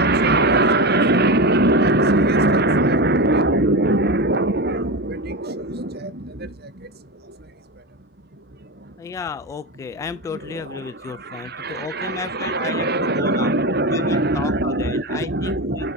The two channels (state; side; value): normal; both; correlation 0.20